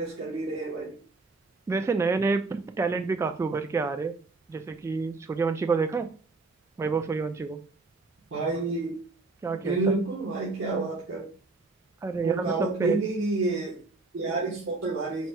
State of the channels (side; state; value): left; quieter; 3.6 dB